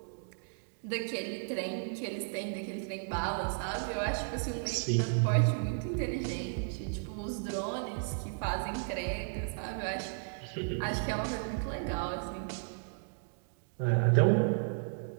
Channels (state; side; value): silent; left; digital silence